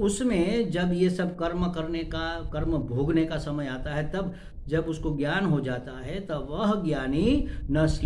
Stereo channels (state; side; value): identical; both; correlation 1.00